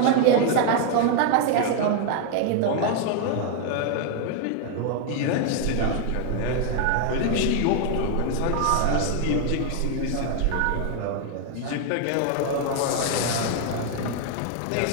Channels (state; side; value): different; both; correlation 0.00